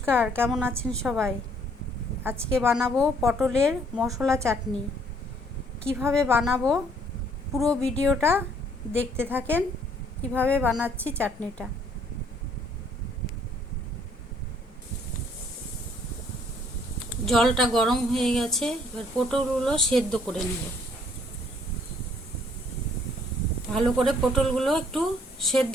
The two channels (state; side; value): normal; both; correlation 0.63